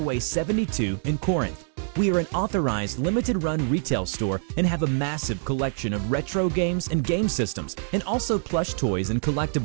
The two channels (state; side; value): silent; left; 61 dB below the other